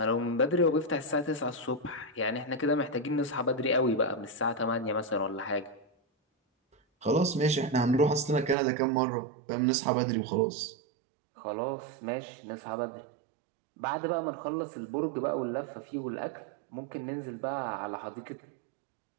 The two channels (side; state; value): left; drops out; at 8.6 s